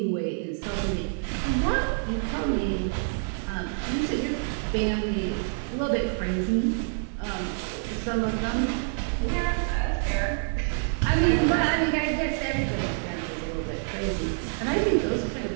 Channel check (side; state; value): left; silent; digital silence